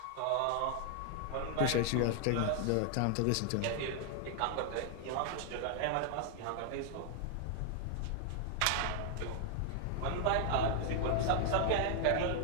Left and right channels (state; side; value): different; both; correlation 0.00